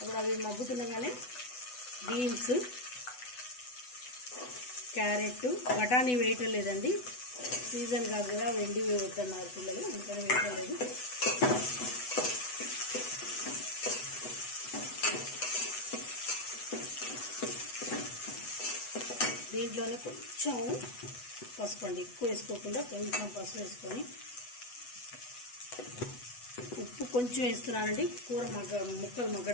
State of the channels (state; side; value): late; right; 8.1 ms